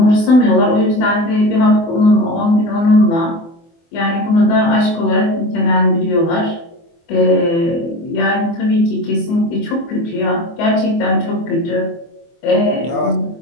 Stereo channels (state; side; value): late; right; 24 ms